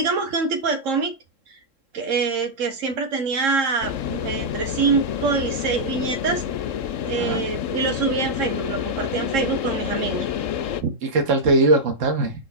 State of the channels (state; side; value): late; left; 3.7 ms